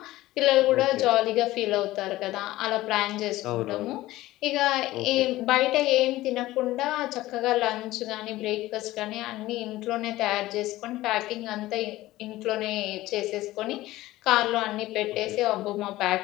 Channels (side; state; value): right; quieter; 16.9 dB